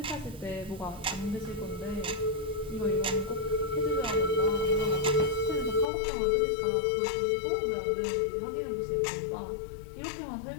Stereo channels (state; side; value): drops out; right; at 5.9 s